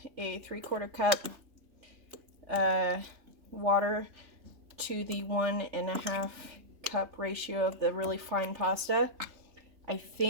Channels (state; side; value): late; left; 3.4 ms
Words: a 3/4 cup water to the 1.5 cup ratio of the really fine pasta. I